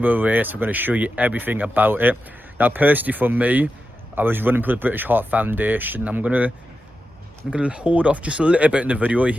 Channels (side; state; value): both; normal; correlation 0.90